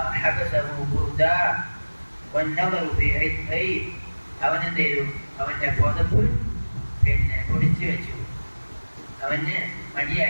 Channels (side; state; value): both; inverted; correlation -1.00